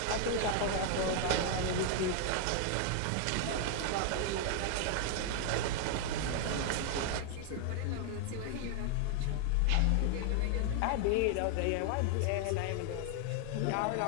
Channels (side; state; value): both; different; correlation 0.00